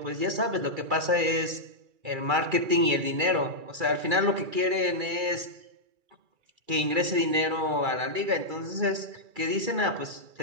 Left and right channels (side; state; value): left; late; 2.3 ms